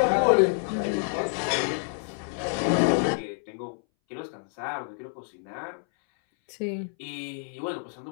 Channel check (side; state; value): right; silent; 59 dB below the other